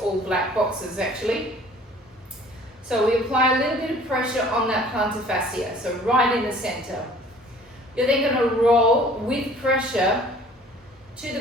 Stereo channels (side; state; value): both; normal; correlation 0.51